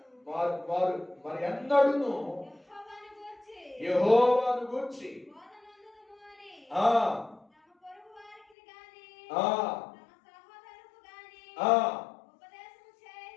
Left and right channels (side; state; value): right; drops out; at 8.5 s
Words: మరి ఎన్నడును యెహోవాను గూర్చి